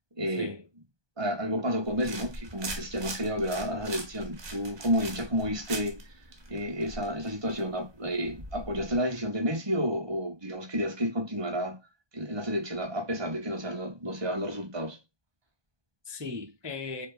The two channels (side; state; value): left; late; 1.2 ms